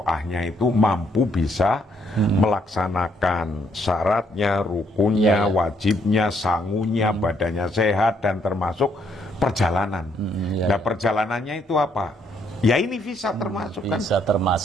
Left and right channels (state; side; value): normal; both; correlation 0.71